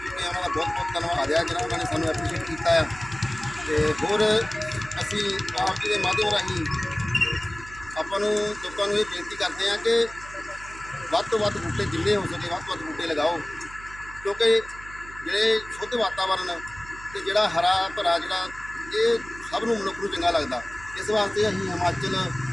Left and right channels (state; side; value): noise; right; hum, 17 dB below the sound